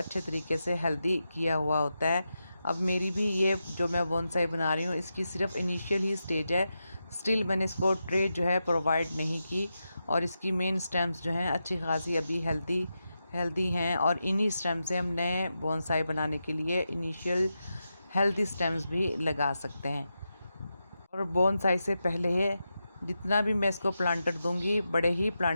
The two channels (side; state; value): both; inverted; correlation -0.88